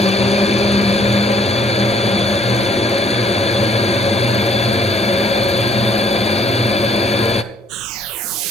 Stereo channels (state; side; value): normal; both; correlation 0.63